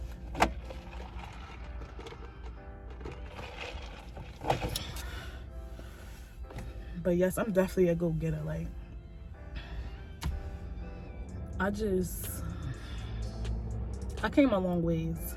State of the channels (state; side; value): identical; both; correlation 1.00